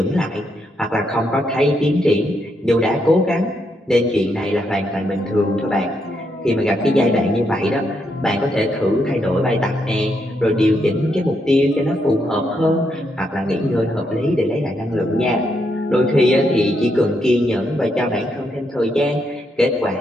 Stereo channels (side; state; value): both; normal; correlation 0.79